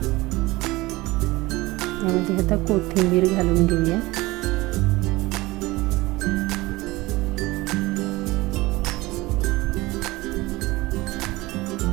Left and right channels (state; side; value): quieter; left; 20.6 dB